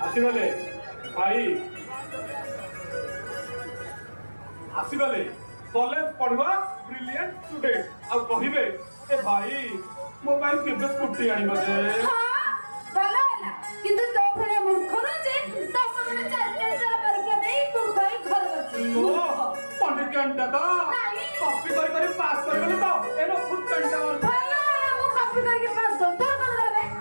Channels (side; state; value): both; inverted; correlation -1.00